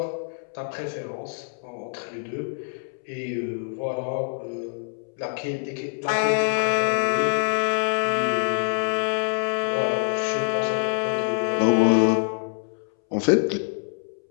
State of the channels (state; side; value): silent; right; 62 dB below the other